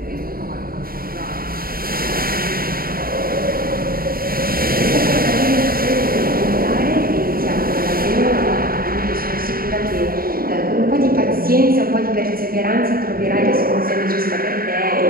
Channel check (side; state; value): left; late; 0.43 ms